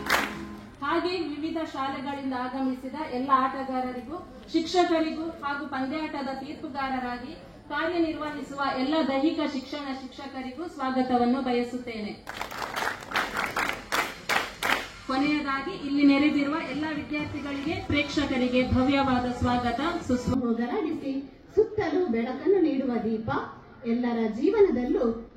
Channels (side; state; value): both; identical; correlation 1.00